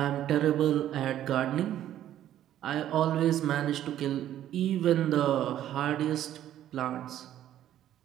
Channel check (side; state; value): left; quieter; 11.9 dB